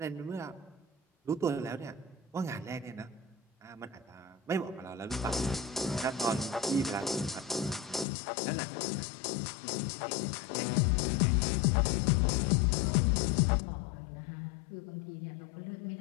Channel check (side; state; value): right; drops out; at 8.1 s